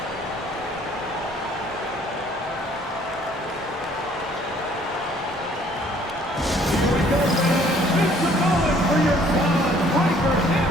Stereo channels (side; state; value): both; normal; correlation 0.59